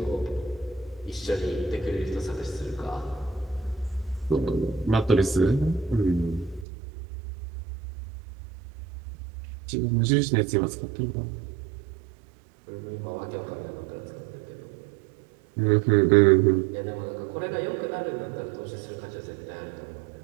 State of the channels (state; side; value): drops out; left; at 6.7 s